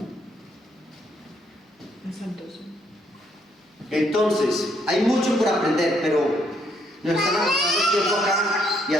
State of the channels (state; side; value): normal; both; correlation 0.71